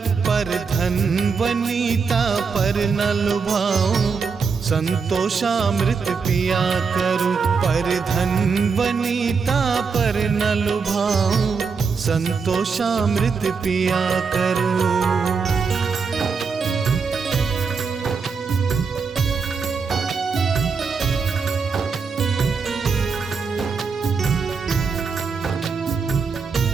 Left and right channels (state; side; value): quieter; left; 5.3 dB